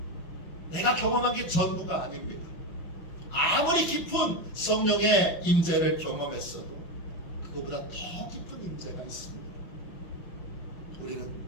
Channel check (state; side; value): late; right; 6.0 ms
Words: 내가 경험한 게 전부가 아닙니다. 아무리 깊은 성령의 임재를 경험했어도 그것보다 더 깊은 임재가 있습니다. 우리는